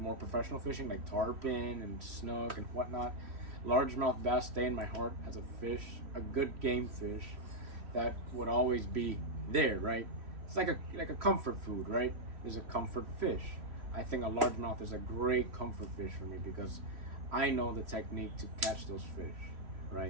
professional fishing like tarpon and snook and whatnot. Largemouth bass stay in my heart as a fish, a good game fish that would always be there, right? It's like a comfort food, right? There's a comfort fish. I think a largemouth is a great comfort fish for me because I know the technique to catch those fish,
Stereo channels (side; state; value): left; late; 3.0 ms